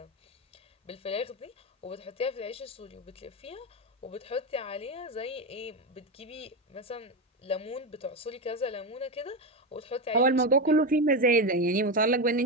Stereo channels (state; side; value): normal; both; correlation 0.13